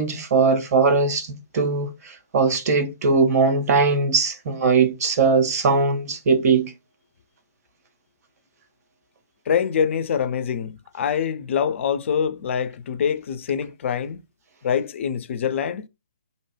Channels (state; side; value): inverted; both; correlation -0.35